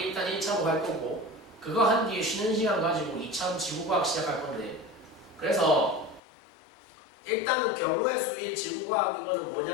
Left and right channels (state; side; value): drops out; right; at 6.2 s